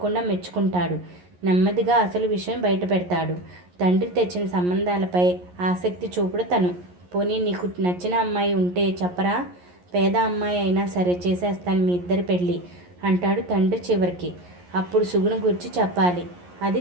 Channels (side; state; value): left; late; 11 ms